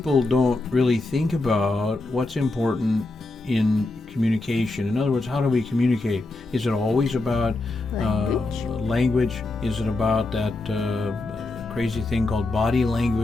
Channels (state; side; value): quieter; right; 3.0 dB